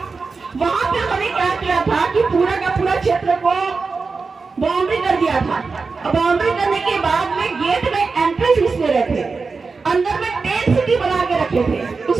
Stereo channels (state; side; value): quieter; left; 4.5 dB